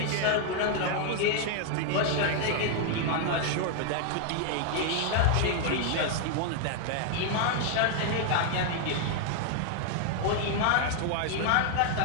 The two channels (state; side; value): different; both; correlation 0.00